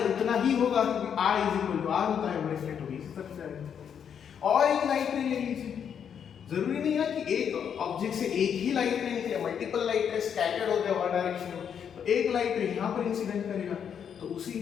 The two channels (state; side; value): quieter; right; 8.0 dB